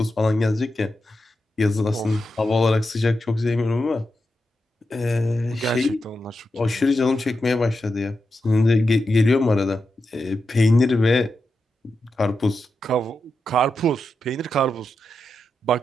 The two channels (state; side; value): normal; both; correlation 0.88